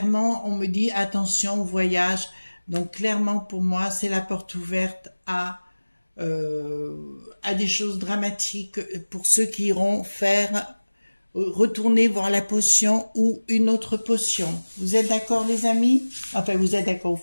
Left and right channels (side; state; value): both; inverted; correlation -1.00